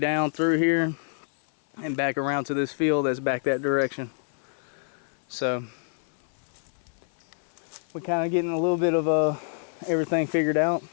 through here and back around to this field that's back that direction. So we're kind of getting a little bit of everything figured out.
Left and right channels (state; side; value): silent; right; 60 dB below the other